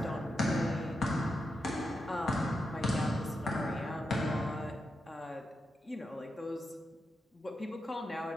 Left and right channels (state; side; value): normal; both; correlation 0.87